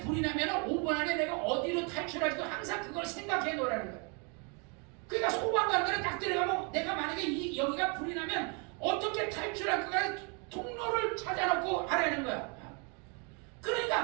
불이 나면 5분 안에 내가 어디로 탈출할지 항상 그걸 생각해 놓으라는 거예요. 그러니까 소방관들은 딱 들어가면 내가 만약에 여기가 불이 나면 어떻게 탈출할까 통로를 찾아놓고 하라는 거야.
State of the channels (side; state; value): left; quieter; 35.1 dB